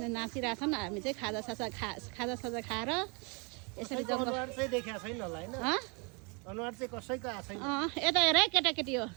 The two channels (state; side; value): quieter; left; 32.9 dB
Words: हामी चाहिँ खाजा साजा खाएर यसरी जङ्गल चाहिँ देखेको छैन होला हैन अनुहार चाहिँ कसैको आएको छैन यता हेर है केटाकेटी हो